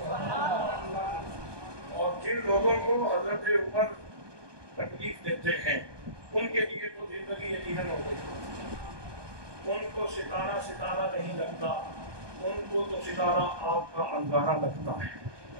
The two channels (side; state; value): left; late; 1.2 ms